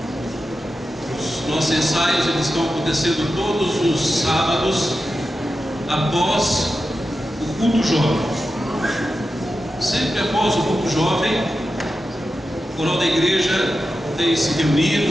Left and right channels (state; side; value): normal; both; correlation 0.91